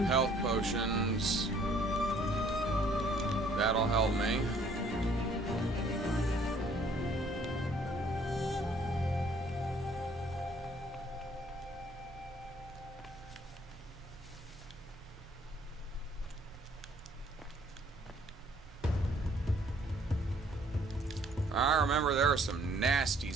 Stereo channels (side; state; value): both; normal; correlation 0.61